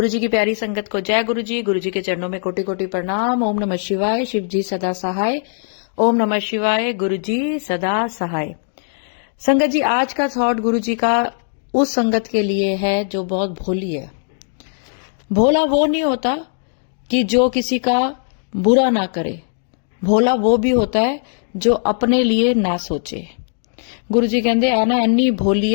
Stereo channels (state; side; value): silent; right; digital silence